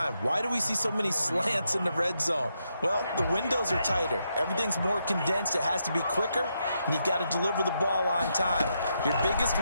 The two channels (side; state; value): both; inverted; correlation -0.81